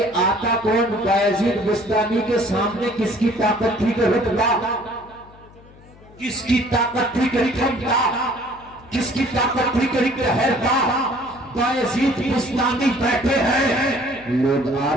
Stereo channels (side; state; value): left; noise; hum, 24 dB below the sound